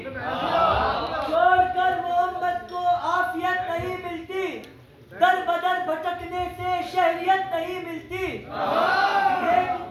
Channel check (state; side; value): identical; both; correlation 1.00